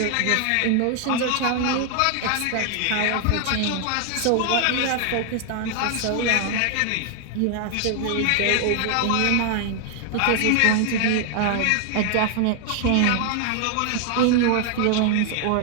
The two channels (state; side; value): different; both; correlation 0.00